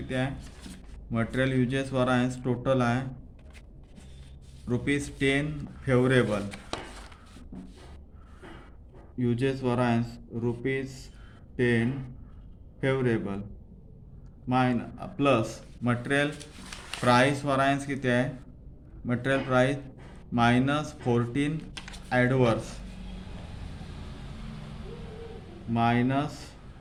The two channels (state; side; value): identical; both; correlation 1.00